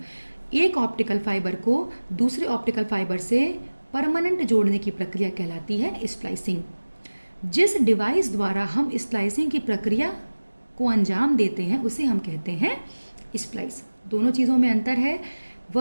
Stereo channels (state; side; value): inverted; both; correlation -1.00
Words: एक ऑप्टिकल फाइबर को दूसरे ऑप्टिकल फाइबर से परमानेंट जोड़ने की प्रक्रिया कहलाती है स्प्लाइसिंग। जिस डिवाइस द्वारा हम स्प्लाइसिंग की प्रक्रिया को अंजाम देते हैं उसे हम कहते हैं स्प्लाइस। दोनों चीज़ों में अंतर है।